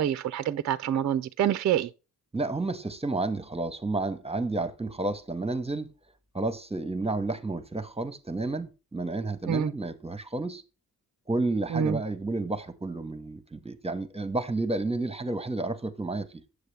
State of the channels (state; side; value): quieter; left; 4.0 dB